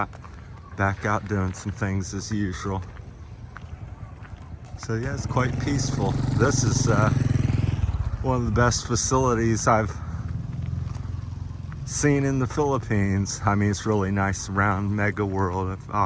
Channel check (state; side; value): identical; both; correlation 1.00